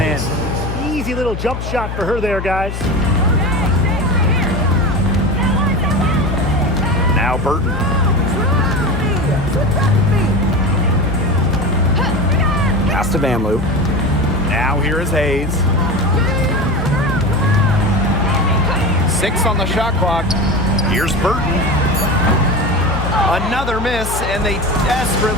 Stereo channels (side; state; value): left; noise; hum, 6 dB below the sound